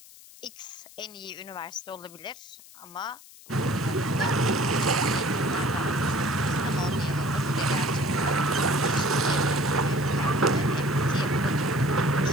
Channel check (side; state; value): left; noise; hiss, 21 dB below the sound